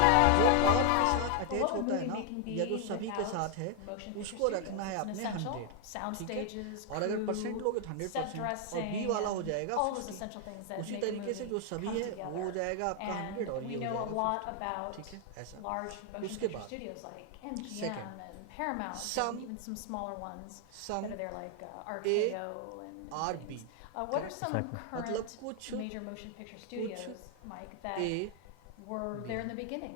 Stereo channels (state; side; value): different; both; correlation 0.00